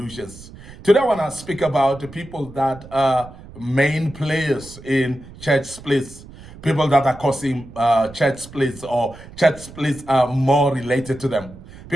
Today I want to speak about the people that are main players in church splits, people that are causing church splits, or church splits are more related to them.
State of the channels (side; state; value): right; noise; rumble, 18 dB below the sound